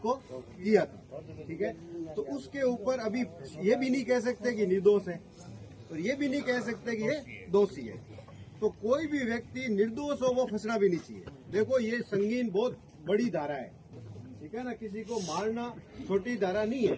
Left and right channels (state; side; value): identical; both; correlation 1.00